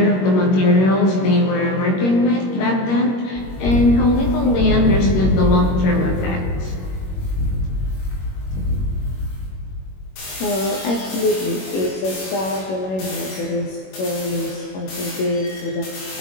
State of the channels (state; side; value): late; right; 21 ms